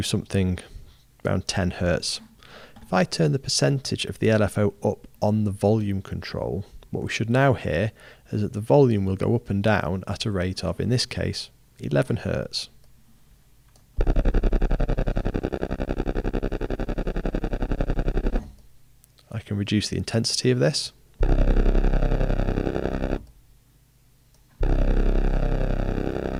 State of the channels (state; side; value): identical; both; correlation 1.00